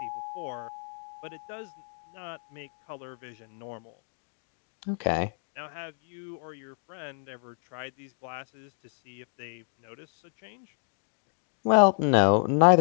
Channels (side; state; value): right; silent; digital silence